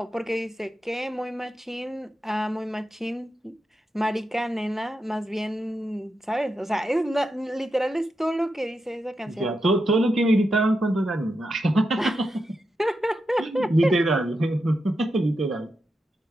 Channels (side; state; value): both; normal; correlation 0.87